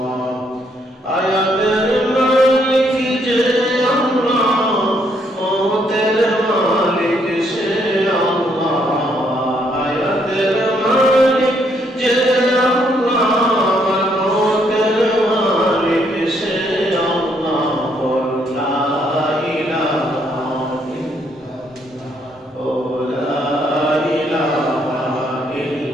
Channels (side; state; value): both; normal; correlation 0.72